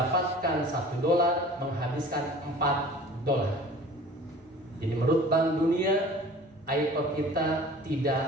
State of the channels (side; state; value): both; normal; correlation 0.44